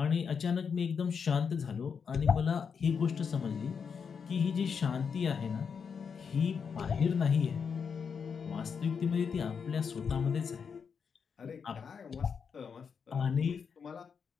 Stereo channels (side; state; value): right; quieter; 6.3 dB